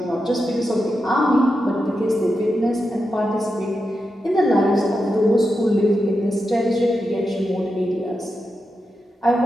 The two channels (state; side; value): normal; both; correlation 0.88